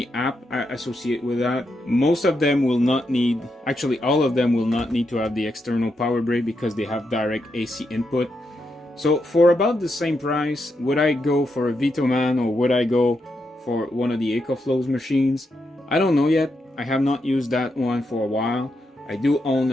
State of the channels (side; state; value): both; normal; correlation 0.83